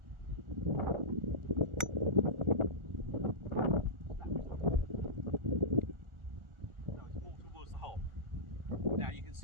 that so it's more towards the hole. Now you can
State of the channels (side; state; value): left; late; 1.4 ms